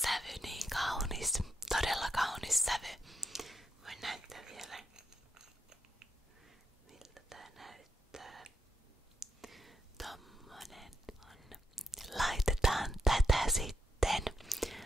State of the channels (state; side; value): normal; both; correlation 0.81